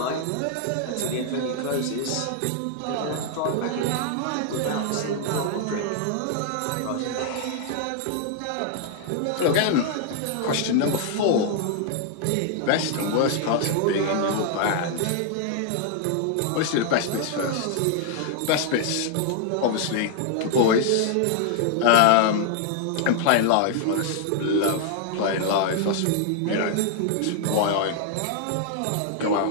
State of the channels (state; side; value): different; both; correlation 0.00